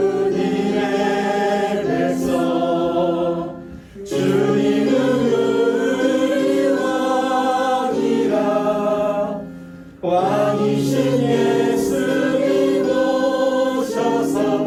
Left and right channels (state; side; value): identical; both; correlation 1.00